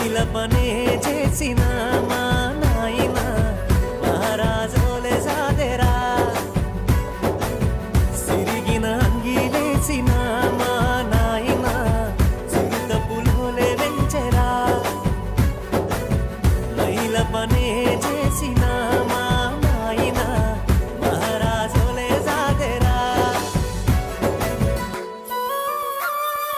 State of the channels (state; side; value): identical; both; correlation 1.00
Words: పనే చేసిన మా నాయన మహారాజోలే సాదెరా సిరిగిన అంగీలేసిన మా నాయన చిరుత పులోలే వెంచెరా మైల పనే చేసిన మా నాయన మహారాజోలే సాదెరా